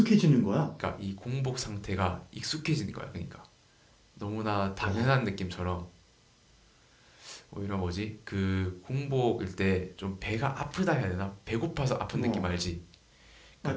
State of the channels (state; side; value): identical; both; correlation 1.00